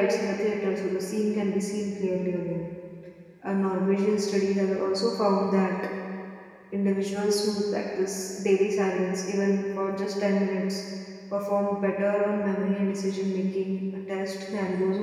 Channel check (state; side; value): identical; both; correlation 1.00